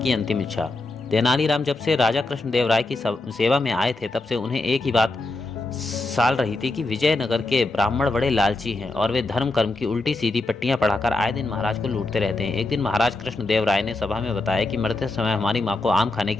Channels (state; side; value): quieter; right; 3.0 dB